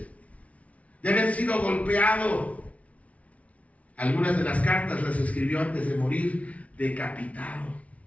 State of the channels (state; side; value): late; right; 0.066 ms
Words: de haber sido golpeado. Algunas de las cartas las escribió antes de morir, decapitado.